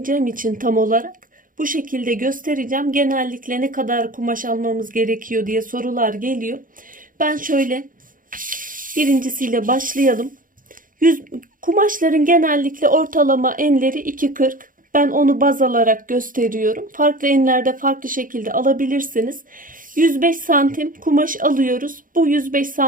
için tam olarak bu şekilde göstereceğim. Genellikle ne kadar kumaş almamız gerekiyor diye sorular geliyor. Ben şöyle birincisiyle başlayalım. Kumaşların genellikle ortalama enleri 2.40. Ben onu baz alarak gösteriyorum. Farklı enlerde farklı şekilde alabilirsiniz. 105 santim kumaş alıyoruz. Bu 105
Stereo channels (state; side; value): late; left; 0.40 ms